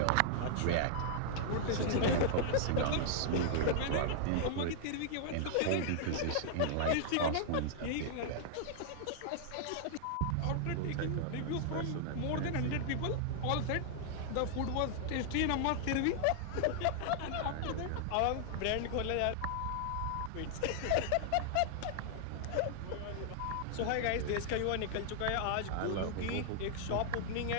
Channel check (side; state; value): both; different; correlation -0.01